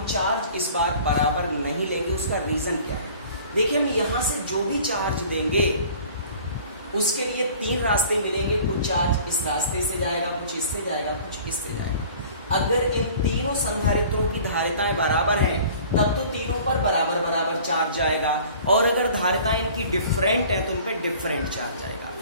चार्ज इस बार बराबर नहीं लेंगे। उसका रीजन क्या है, देखिए हम यहाँ से जो भी चार्ज देंगे उसके लिए 3 रास्ते मिलेंगे। कुछ चार्ज इस रास्ते से जाएगा, कुछ इससे जाएगा, कुछ इससे जाएगा। अगर इन तीनों संधारित्रों की धारिताएं बराबर हैं तब तो तीनों पर बराबर चार्ज जाएगा और अगर धारिताएं इनकी डिफरेंट हैं तो उन पर डिफरेंट चार्ज जाएगा।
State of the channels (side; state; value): both; inverted; correlation -0.47